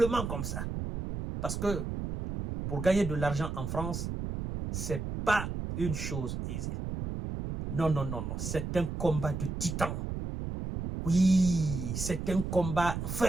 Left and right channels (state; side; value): noise; right; rumble, 4 dB below the sound